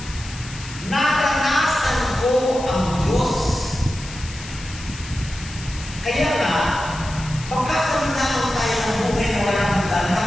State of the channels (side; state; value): left; noise; hiss, 14 dB below the sound